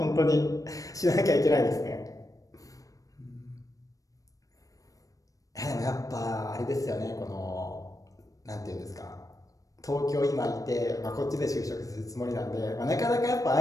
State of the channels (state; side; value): late; right; 0.16 ms